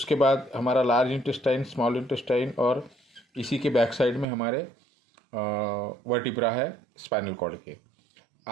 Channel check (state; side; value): drops out; left; at 4.2 s